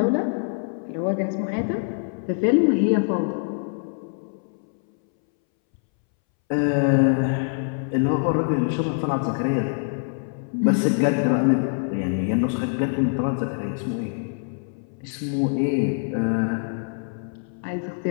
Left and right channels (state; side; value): silent; right; 61 dB below the other